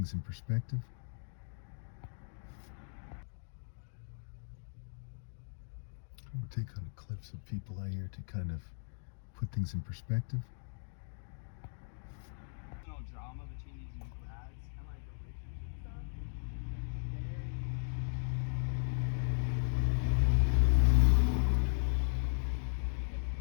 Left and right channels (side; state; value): right; silent; digital silence